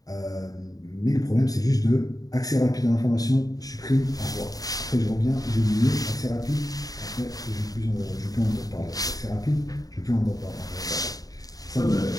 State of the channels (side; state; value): right; late; 0.18 ms